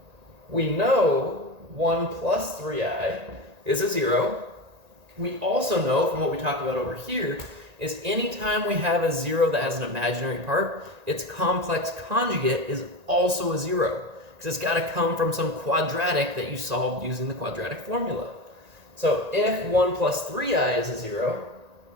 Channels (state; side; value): late; left; 1.8 ms